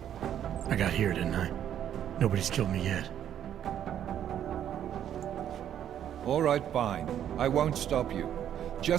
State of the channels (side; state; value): left; quieter; 10.2 dB